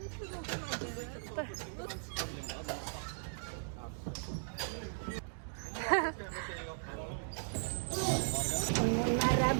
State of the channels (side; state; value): left; silent; digital silence